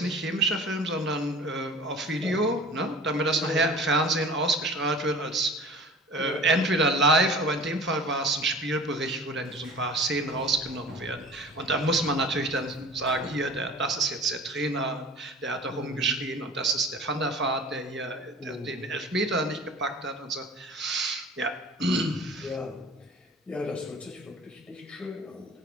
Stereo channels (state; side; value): normal; both; correlation 0.42